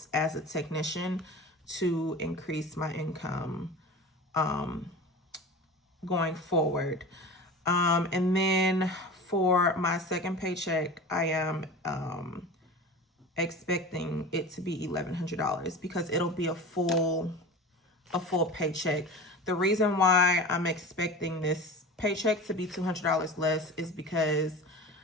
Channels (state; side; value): normal; both; correlation 0.34